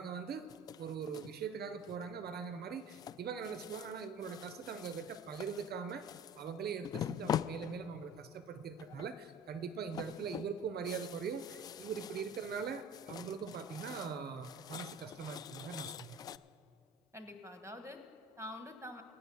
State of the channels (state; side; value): normal; both; correlation 0.42